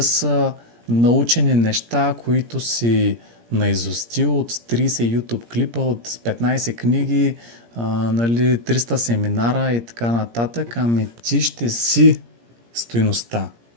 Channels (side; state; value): left; late; 17 ms